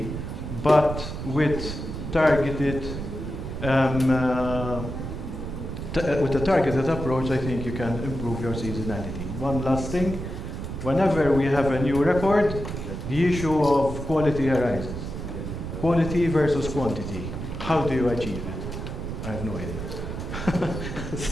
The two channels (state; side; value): noise; right; rumble, 6 dB below the sound